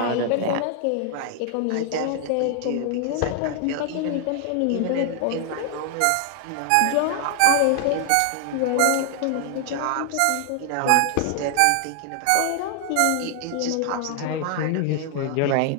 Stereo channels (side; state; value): both; different; correlation 0.00